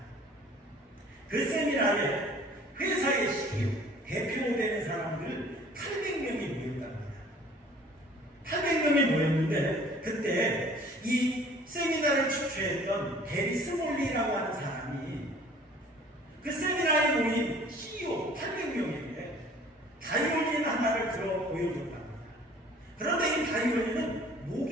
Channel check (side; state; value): both; normal; correlation 0.52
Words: 그 세미나에 회사의 CEO, 대표되는 사람들 800명이 모였다고 합니다. 800명이 모였는데 그때 이 세미나를 주최했던 게리 스몰리라고 하는 사람이 그 세미나에 모인 CEO 800명에게 바이올린 하나를 들어 보여줬답니다. 그런데 이 바이올린은